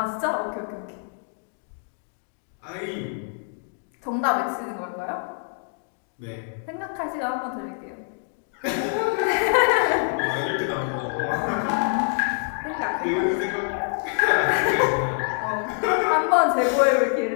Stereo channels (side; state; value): right; silent; 60 dB below the other